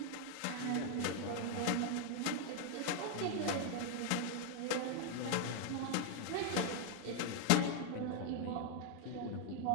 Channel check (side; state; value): both; different; correlation 0.00